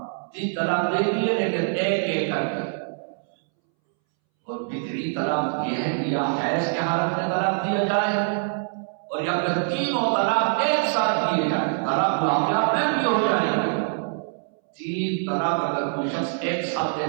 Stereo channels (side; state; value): left; silent; 62 dB below the other